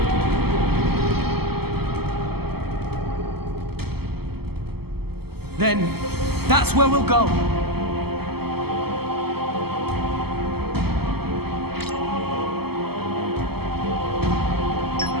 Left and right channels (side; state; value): left; late; 0.96 ms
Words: Then, that's where we'll go.